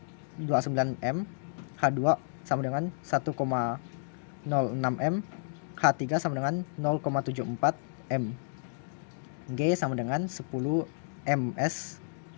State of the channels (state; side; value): silent; right; digital silence